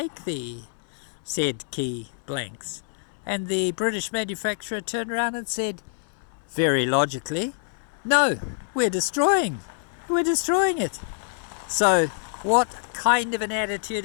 the said key blanks? And the British manufacturer turned around and said, very logically, no, we're destroying it. So what kind of an attitude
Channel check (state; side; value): silent; right; digital silence